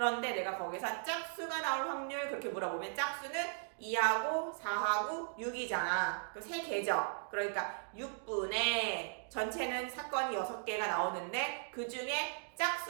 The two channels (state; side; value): silent; left; digital silence